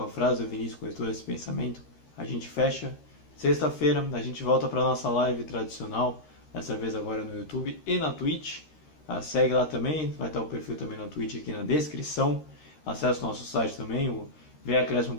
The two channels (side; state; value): right; late; 13 ms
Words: a frase do Vinícius, com todo esse pensamento, a gente fecha. Sexta-feira a gente volta para a nossa live tradicional, dessa vez agora no YouTube e na Twitch. Segue lá também, vai estar o perfil também na Twitch aqui na descrição. Acesse o nosso site também, o